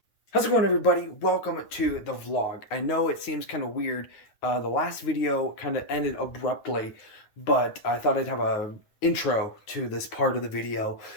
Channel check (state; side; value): late; right; 9.4 ms